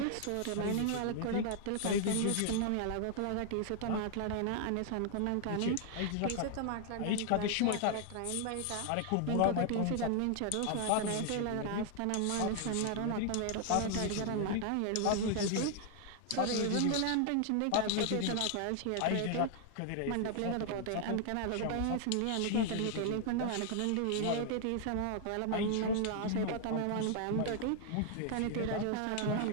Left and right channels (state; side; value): different; both; correlation 0.00